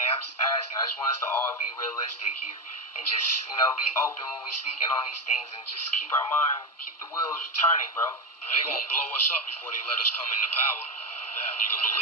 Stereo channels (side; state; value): both; normal; correlation 0.12